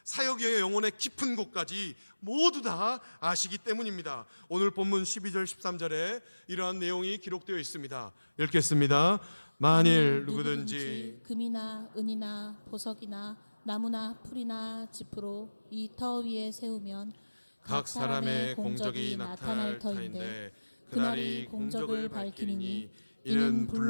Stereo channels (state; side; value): inverted; both; correlation -1.00